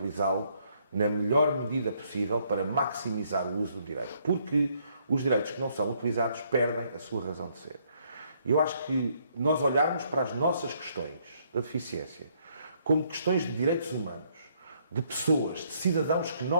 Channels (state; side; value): inverted; both; correlation -0.69